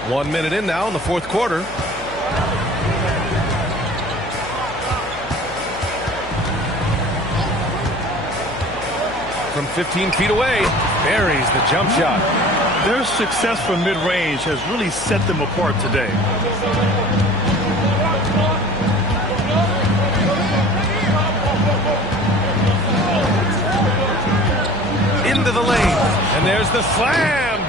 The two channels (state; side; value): noise; left; hum, 16 dB below the sound